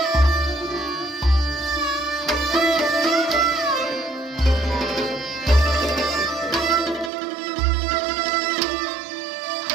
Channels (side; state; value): left; drops out; at 7.1 s